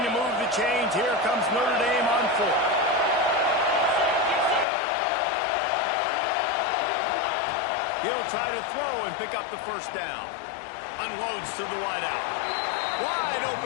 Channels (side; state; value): right; drops out; at 4.7 s